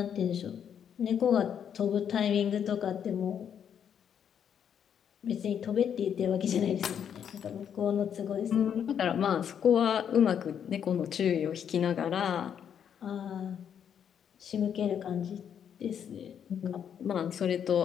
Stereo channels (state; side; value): quieter; right; 8.4 dB